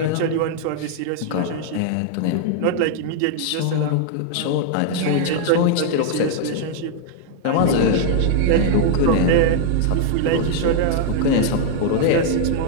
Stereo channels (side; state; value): both; different; correlation -0.01